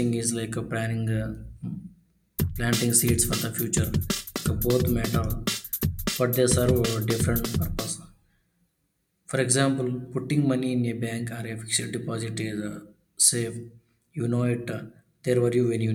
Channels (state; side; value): identical; both; correlation 1.00